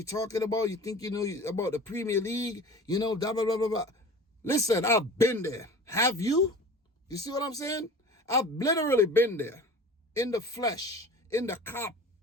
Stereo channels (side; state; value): both; normal; correlation 0.40